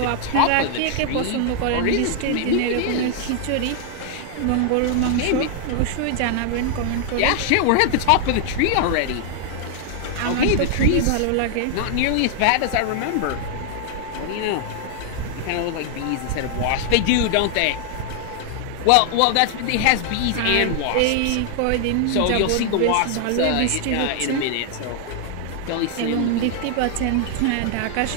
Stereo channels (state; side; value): different; both; correlation 0.00